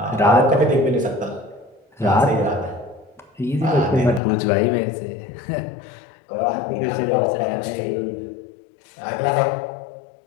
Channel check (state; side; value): drops out; right; at 4.2 s